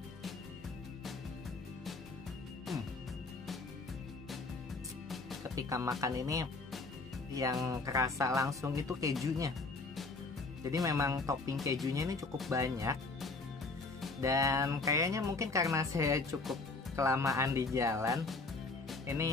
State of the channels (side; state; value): right; quieter; 3.6 dB